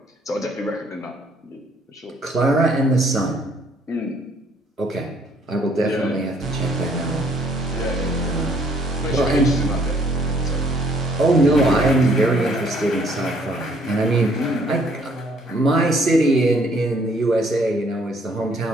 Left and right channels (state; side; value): normal; both; correlation 0.64